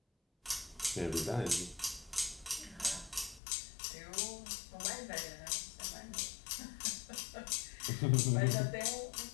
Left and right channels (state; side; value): drops out; right; at 3.4 s